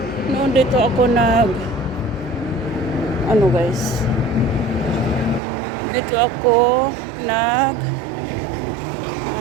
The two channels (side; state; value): left; drops out; at 5.4 s